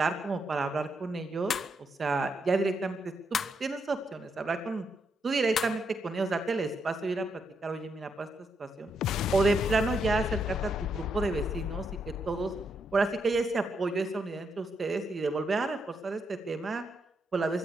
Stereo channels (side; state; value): both; normal; correlation 0.79